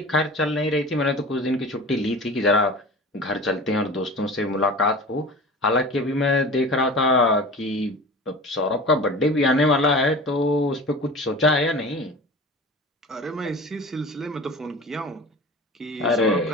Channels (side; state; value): both; normal; correlation 0.36